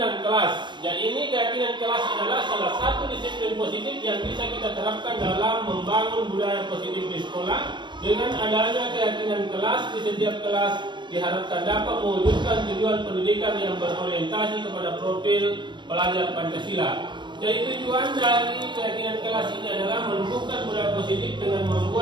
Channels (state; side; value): late; left; 0.22 ms